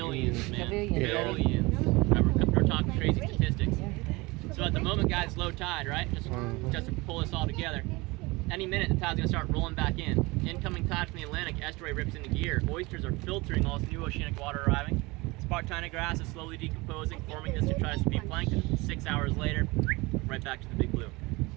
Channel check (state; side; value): quieter; left; 23.7 dB